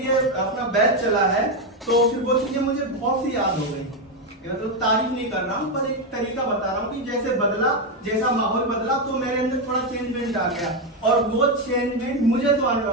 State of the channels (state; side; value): normal; both; correlation 0.07